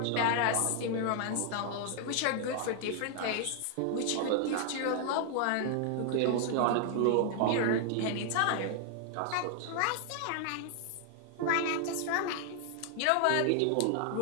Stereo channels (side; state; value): both; different; correlation 0.00